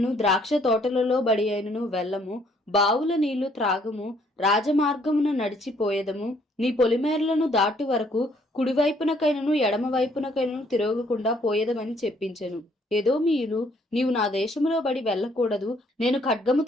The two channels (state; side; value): normal; both; correlation 0.65